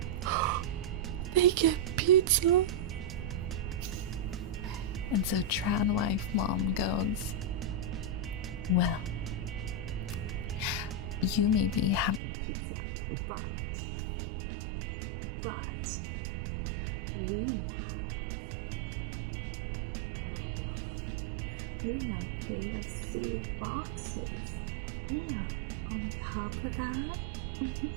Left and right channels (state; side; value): drops out; left; at 12.2 s